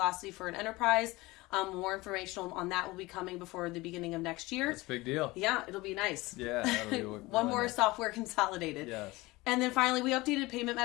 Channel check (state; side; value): quieter; right; 21.2 dB